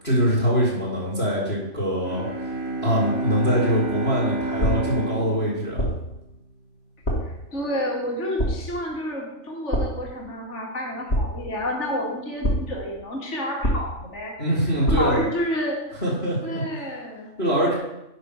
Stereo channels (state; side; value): late; right; 3.1 ms